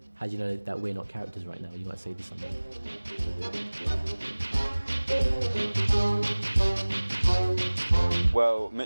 How do you know that we're not characters right now? You might say this something. Well,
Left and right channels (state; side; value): inverted; both; correlation -1.00